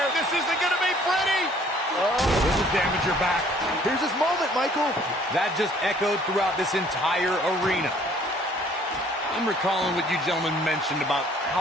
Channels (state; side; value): normal; both; correlation 0.58